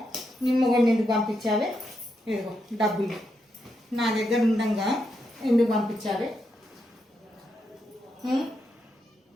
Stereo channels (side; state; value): both; normal; correlation 0.83